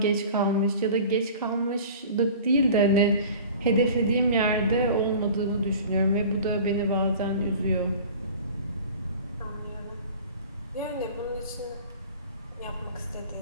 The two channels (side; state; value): both; inverted; correlation -0.42